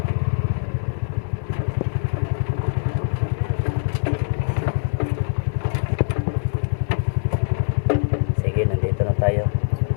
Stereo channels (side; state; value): right; silent; 64 dB below the other